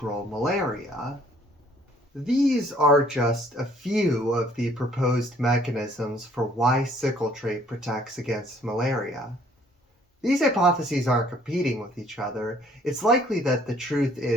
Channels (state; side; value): normal; both; correlation 0.60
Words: malaria. These are just a few of the proposed mechanisms for why sickle trait protects against malaria. These hypotheses aren't competing with each other. It's likely that the truth